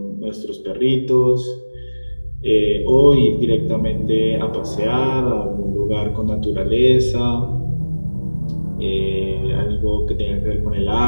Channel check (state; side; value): inverted; both; correlation -1.00